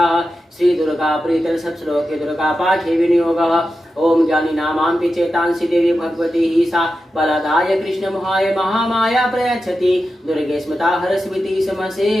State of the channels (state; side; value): normal; both; correlation 0.91